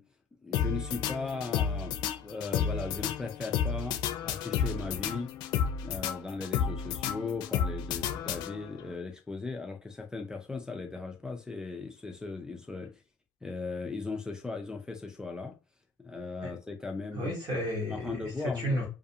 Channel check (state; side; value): quieter; right; 5.3 dB